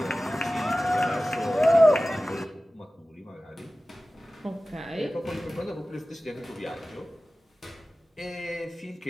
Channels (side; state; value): both; normal; correlation 0.96